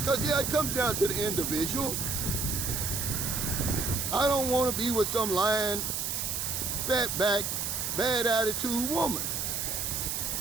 yeah, it comes down to the individual. I don't want to be with some lying, fat back, bad attitude woman.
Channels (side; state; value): right; noise; hiss, 1 dB below the sound